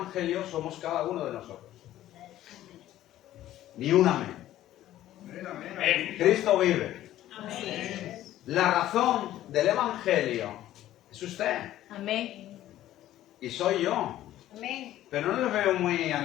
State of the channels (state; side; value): quieter; right; 13.5 dB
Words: somos cada uno de nosotros. Ni un amén. Cristo vive. La razón del Evangelio es usted. Amén. Y soy yo. Amén. Pero no les veo muy